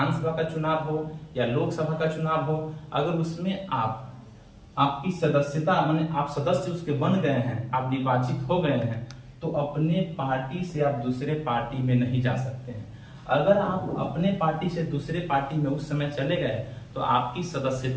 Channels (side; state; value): both; identical; correlation 1.00